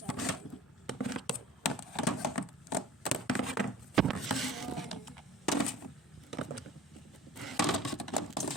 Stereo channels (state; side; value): normal; both; correlation 0.43